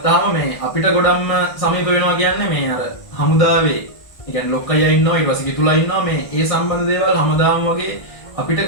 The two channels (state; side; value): late; right; 1.6 ms